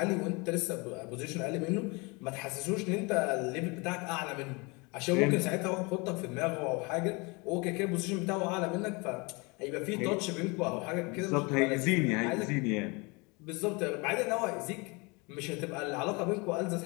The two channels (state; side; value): quieter; right; 28.2 dB